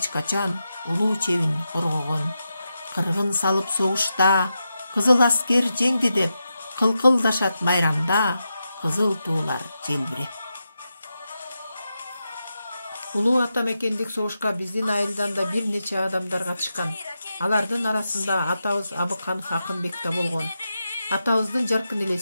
качан улуу чебин коргогон. Кыргын салып согушта, кызыл аскер жеңди деп, кылкылдашат майрамда, кызыл туулар желбиреп. Улуу атамекендик согушка биздин айылдан да бир нече адамдар катышкан. Алардын арасында атабыз Абыканов Акынбек да болгон. Атабыздын жаркын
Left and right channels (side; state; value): both; inverted; correlation -0.88